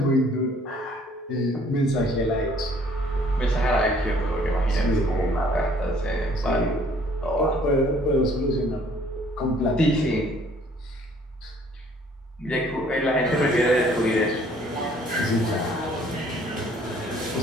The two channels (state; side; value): normal; both; correlation 0.59